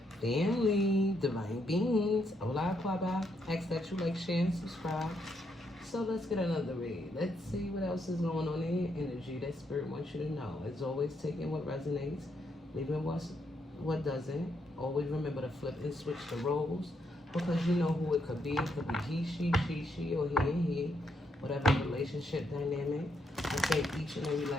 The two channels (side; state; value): both; normal; correlation 0.77